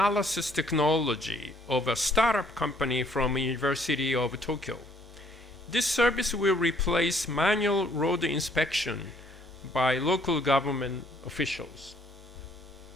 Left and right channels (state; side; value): normal; both; correlation 0.64